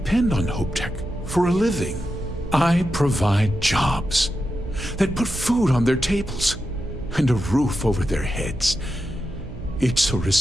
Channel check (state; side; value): noise; right; hum, 12 dB below the sound